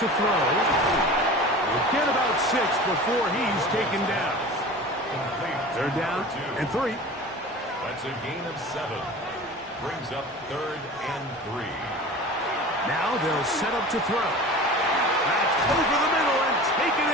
to throw. He'll get about 6 before he's taken down. They're down and 3. That's a gain of 7. Brings up third and 3. Now they'll set up to throw. That's over the middle and taken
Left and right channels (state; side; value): normal; both; correlation 0.37